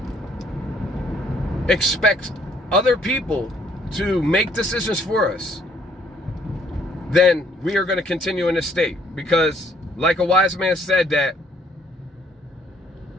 expect other people to make decisions for us, then we are going to continue in this state. Because like a wise man said, that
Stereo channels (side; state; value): both; normal; correlation 0.64